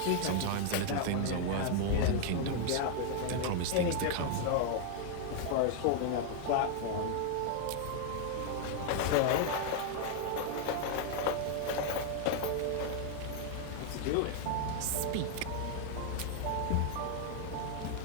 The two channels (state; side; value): different; both; correlation 0.00